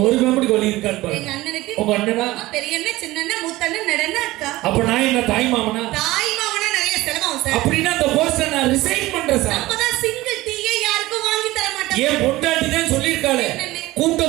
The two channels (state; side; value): quieter; left; 18.3 dB